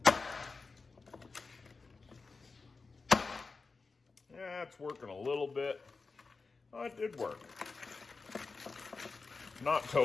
Yeah, it's working a little bit. Oh, it did work. Not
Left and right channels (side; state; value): right; quieter; 4.2 dB